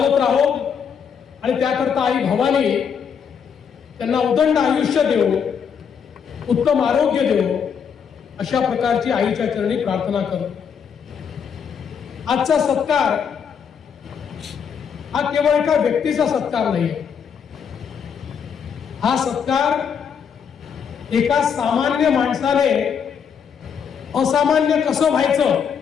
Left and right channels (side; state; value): right; quieter; 7.1 dB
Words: राहो आणि त्याकरता आई भवानी त्यांना उदंड आयुष्य देव, उत्तम आरोग्य देव, अशा प्रकारची आईच्या चरणी प्रार्थना करतो। आजचा सत्कार हा केवळ एका व्यक्तीचा सत्कार नाही, हा सत्कार एका सामान्य माणसाने असामान्य कसं व्हायचं